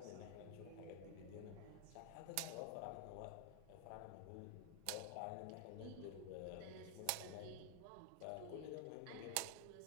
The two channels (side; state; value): both; different; correlation 0.00